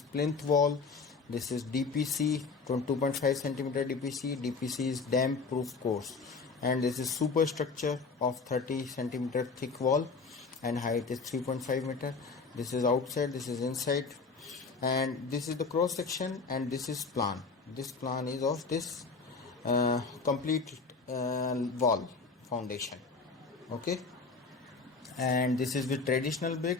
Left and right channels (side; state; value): right; quieter; 4.5 dB